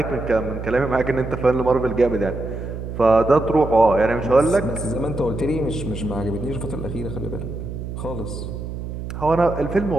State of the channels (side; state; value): right; noise; hum, 7 dB below the sound